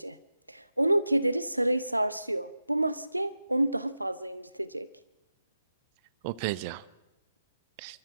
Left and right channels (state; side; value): inverted; both; correlation -0.90